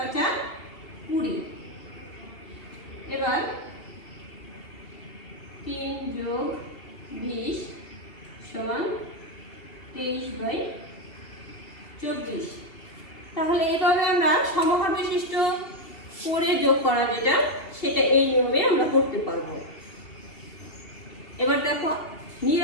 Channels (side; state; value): right; late; 2.8 ms